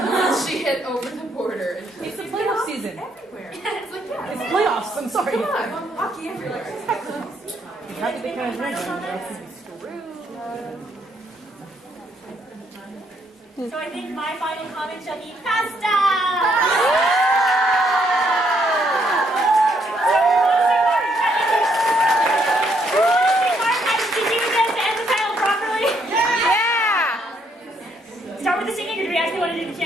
She hit over the border. And It's the playoff season. everywhere. It's like, yeah, It's playoffs. I'm sorry. come on, hockey everywhere. How did they kind of So, I think my final comment shall be pasta! Start with the singing, or do we actually want to do the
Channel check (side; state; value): both; normal; correlation 0.72